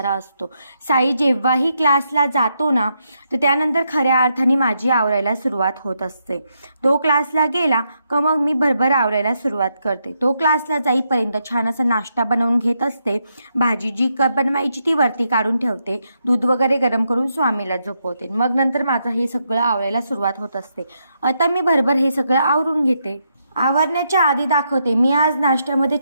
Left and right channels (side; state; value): both; inverted; correlation -0.80